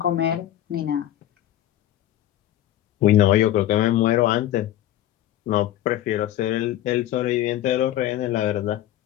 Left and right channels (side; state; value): right; quieter; 13.1 dB